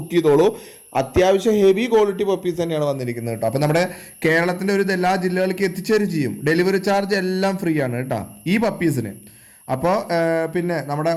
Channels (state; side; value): identical; both; correlation 1.00